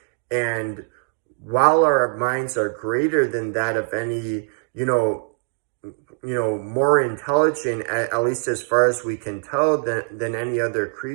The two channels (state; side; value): silent; left; digital silence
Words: And while our minds are greater than that of any, more intelligent, at least as far as we can tell, than any other